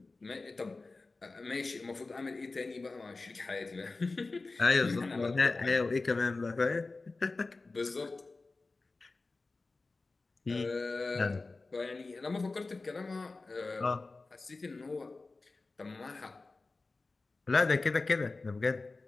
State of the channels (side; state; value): right; quieter; 3.6 dB